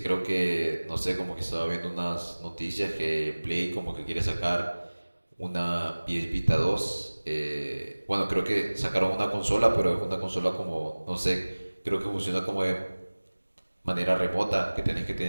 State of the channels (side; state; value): both; inverted; correlation -1.00